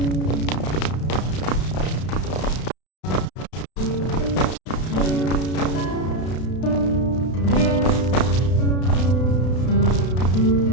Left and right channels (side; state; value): right; late; 32 ms